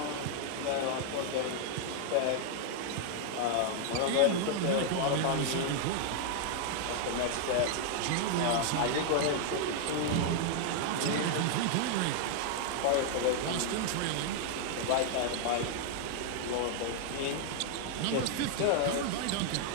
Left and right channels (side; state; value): both; different; correlation 0.00